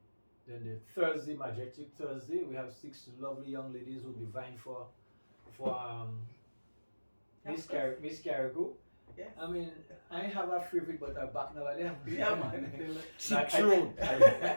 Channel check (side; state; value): both; inverted; correlation -1.00